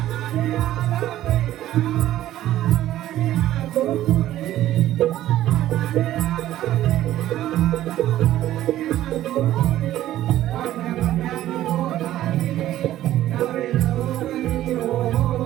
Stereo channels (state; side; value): quieter; left; 13.6 dB